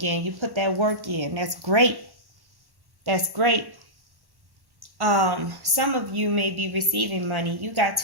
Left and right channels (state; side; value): late; left; 1.1 ms